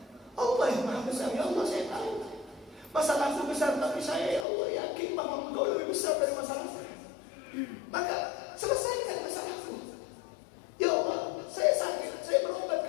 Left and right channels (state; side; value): drops out; right; at 4.5 s